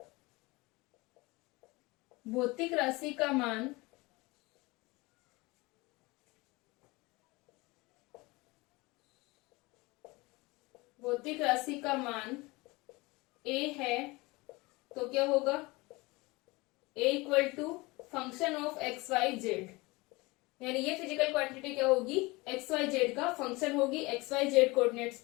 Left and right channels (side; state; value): right; quieter; 23.4 dB